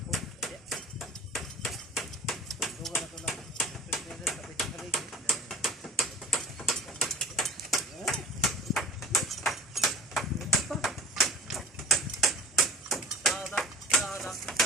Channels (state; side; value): normal; both; correlation 0.42